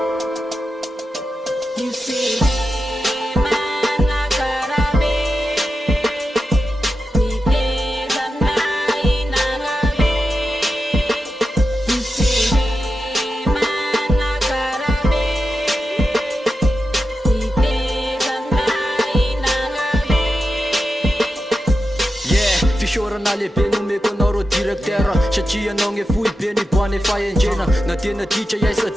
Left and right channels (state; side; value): normal; both; correlation 0.90